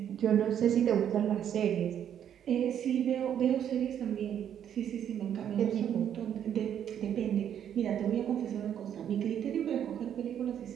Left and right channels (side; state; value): left; quieter; 9.5 dB